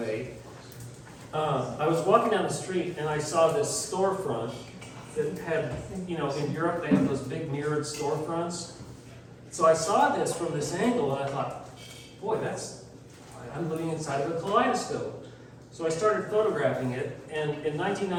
I was walking down the street and I saw this storefront that had, in Europe they have those big mirrored storefronts. So I saw this from this angle and I thought, boy, I'm living inside of a kaleidoscope. So I started photographing it, and in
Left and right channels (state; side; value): identical; both; correlation 1.00